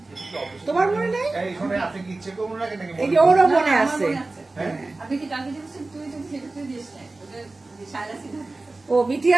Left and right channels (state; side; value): quieter; left; 3.2 dB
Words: তোমার মনে নেই? এই যে ওরও মনে আছে। আপনি কি কালকে দিয়েছেন? তুই তো সেটা দিস না, ও মিঠি